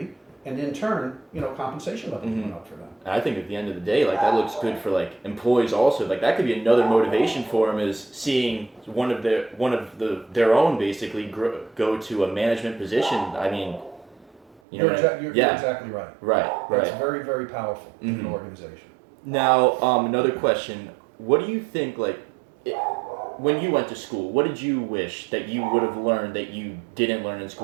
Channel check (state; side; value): drops out; left; at 14.6 s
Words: and in turn, you know, compensation levels Mm-hmm. went up for them. And I think at the end of the day, like that looks good for like employees also. Like that could be another motivation for them, is seeing one of their own basically go to a management position. I mean, you know, You're yeah, exactly right. right. That's very, very powerful in an Mhm. organization. Now, another question. What do you think, like, when you went to school, what did you wish that you would have learned that you didn't learn in